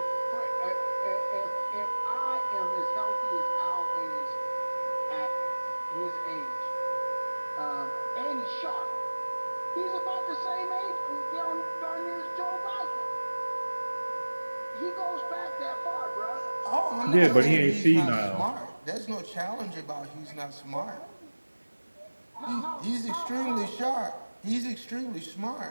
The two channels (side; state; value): both; inverted; correlation -1.00